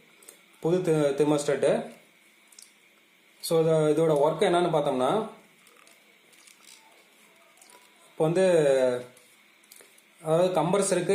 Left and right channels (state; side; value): identical; both; correlation 1.00